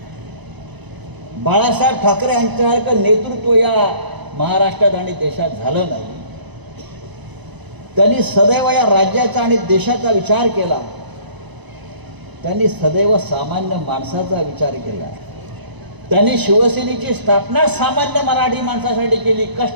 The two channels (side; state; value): left; late; 1.0 ms